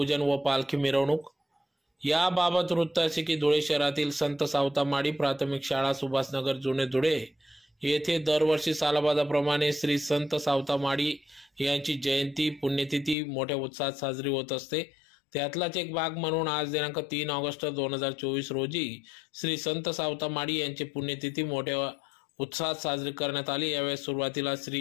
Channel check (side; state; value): right; drops out; at 13.2 s